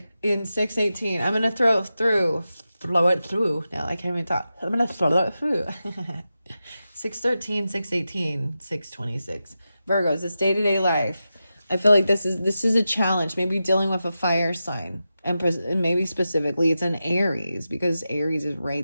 in 618, I'm gonna flow it through. Now I can't even talk. I'm gonna flow it through. 613, 618, 626. Virgos, it's day-to-day life. I feel like this is a challenge. Maybe dealing with a fire sign. And maybe specifically it's an Aries, because Aries is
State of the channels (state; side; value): inverted; both; correlation -0.91